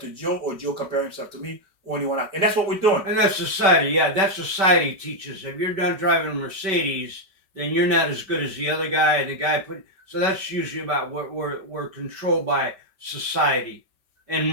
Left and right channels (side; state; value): left; late; 5.2 ms